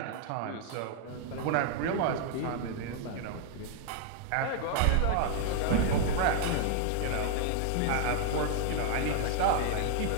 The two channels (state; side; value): different; both; correlation 0.00